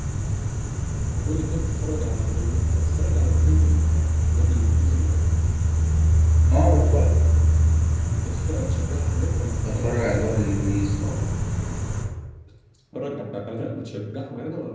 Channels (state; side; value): identical; both; correlation 1.00